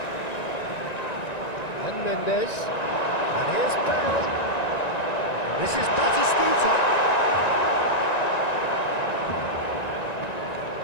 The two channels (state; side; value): late; right; 1.9 ms